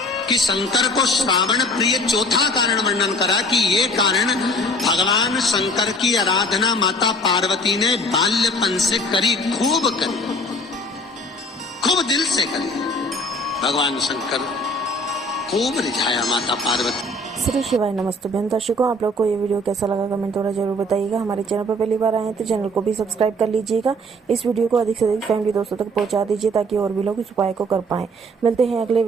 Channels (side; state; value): both; normal; correlation 0.50